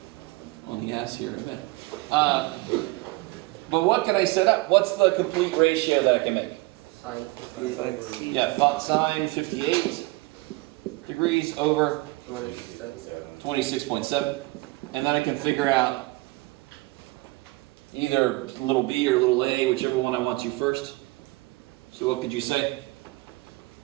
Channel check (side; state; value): left; quieter; 22.8 dB